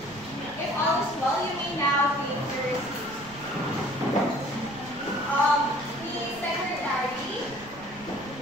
If all is well, you may now take your seat. The secretary,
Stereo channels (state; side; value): noise; right; rumble, 20 dB below the sound